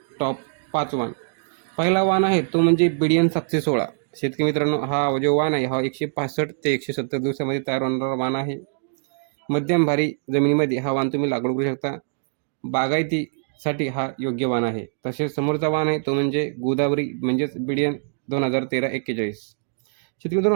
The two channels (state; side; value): silent; left; digital silence